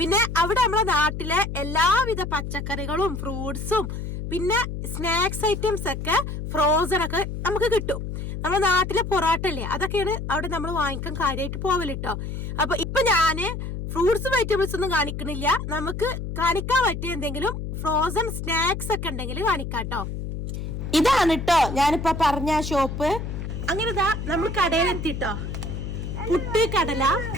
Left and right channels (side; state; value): left; noise; hum, 5 dB below the sound